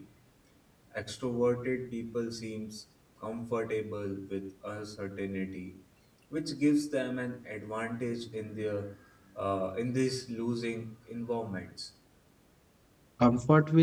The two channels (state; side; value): identical; both; correlation 1.00